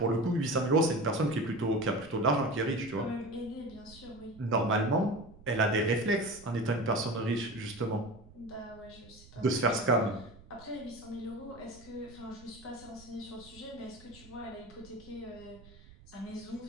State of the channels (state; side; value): noise; right; rumble, 21 dB below the sound